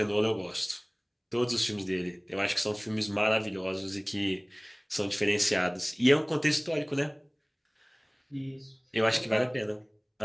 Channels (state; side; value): identical; both; correlation 1.00